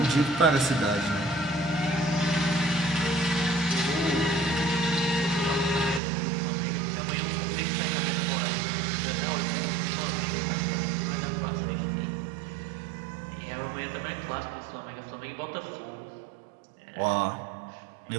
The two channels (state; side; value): drops out; left; at 6.0 s